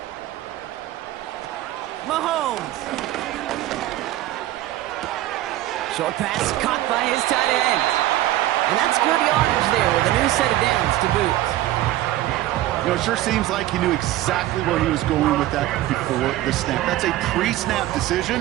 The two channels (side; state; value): left; quieter; 14.9 dB